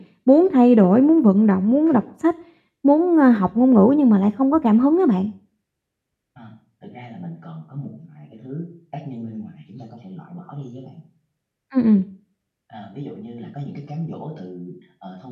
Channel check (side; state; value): both; identical; correlation 1.00